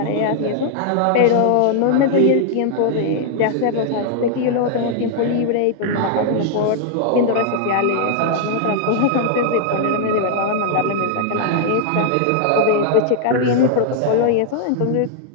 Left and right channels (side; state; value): both; different; correlation -0.01